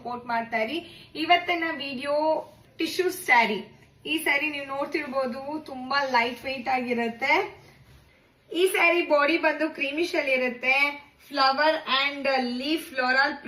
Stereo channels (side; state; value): both; identical; correlation 1.00